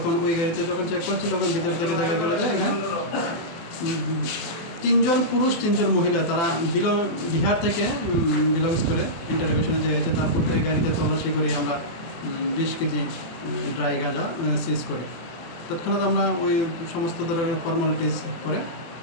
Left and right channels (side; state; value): right; late; 24 ms